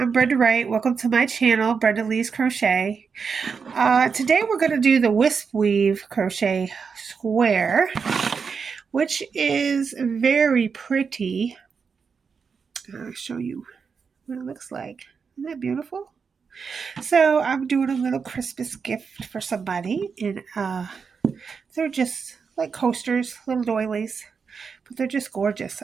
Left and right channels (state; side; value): quieter; left; 5.7 dB